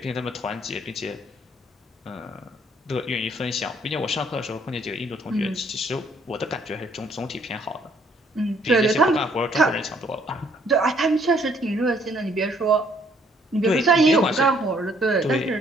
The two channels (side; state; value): both; normal; correlation 0.65